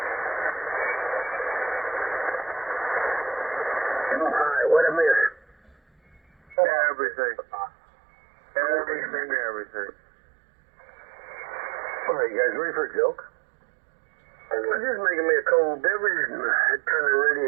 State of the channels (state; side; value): drops out; left; at 6.6 s